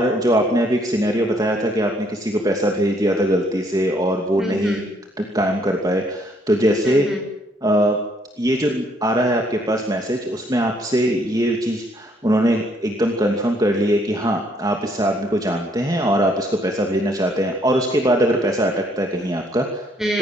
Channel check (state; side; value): normal; both; correlation 0.67